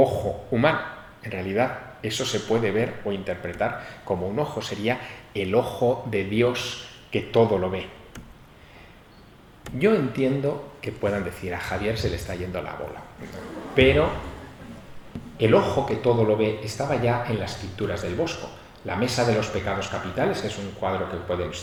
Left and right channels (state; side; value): identical; both; correlation 1.00